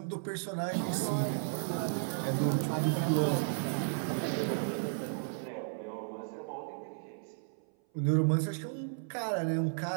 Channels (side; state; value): left; silent; 55 dB below the other